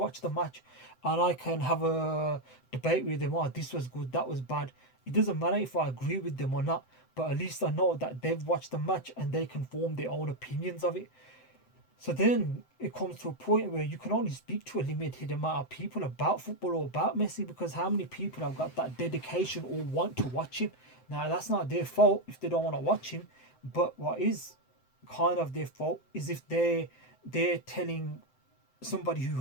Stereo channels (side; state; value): right; late; 7.8 ms